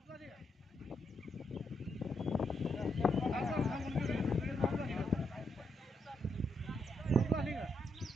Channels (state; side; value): normal; both; correlation 0.79